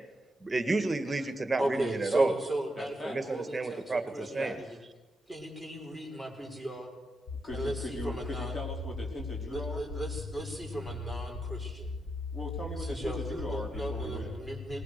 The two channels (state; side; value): normal; both; correlation 0.84